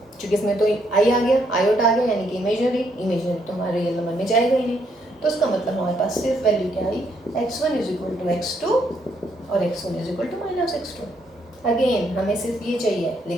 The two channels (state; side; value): normal; both; correlation 0.73